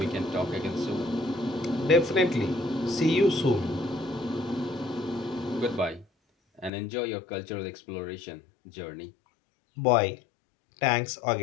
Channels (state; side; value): drops out; right; at 6.7 s